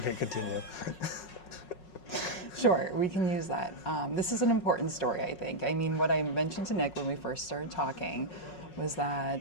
continue. Sure, we can use that. This is an important story, I think. I mean, what I mentioned to Nick when we first started talking was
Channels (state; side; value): late; right; 5.5 ms